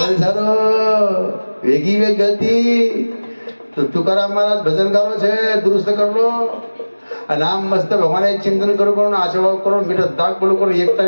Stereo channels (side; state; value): both; inverted; correlation -1.00